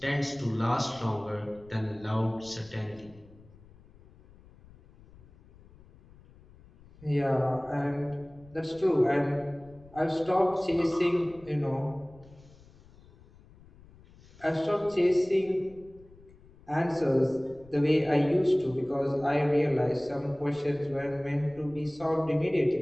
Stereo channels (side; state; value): left; noise; rumble, 24 dB below the sound